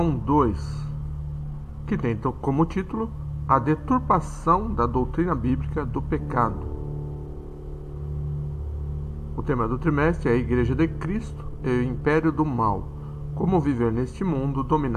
2, que tem como título A Deturpação da Doutrina Bíblica do Pecado. O tema do trimestre é a Igreja de Cristo e o Império do Mal, como viver neste mundo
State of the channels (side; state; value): both; identical; correlation 1.00